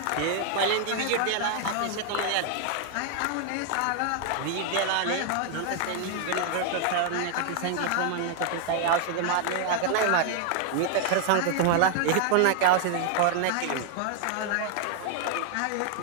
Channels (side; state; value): both; different; correlation 0.00